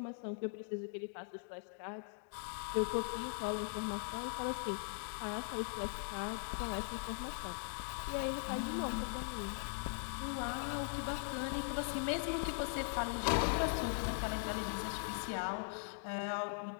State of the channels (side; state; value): right; silent; digital silence